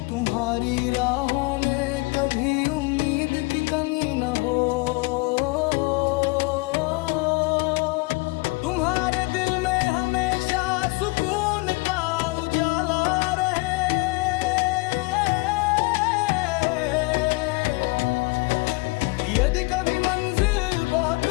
तुम्हारी राहों में कभी उम्मीद की कमी न हो, तुम्हारे दिल में हमेशा सुकून का उजाला रहे। यदि कभी मंजिल बहुत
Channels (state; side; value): quieter; right; 25.7 dB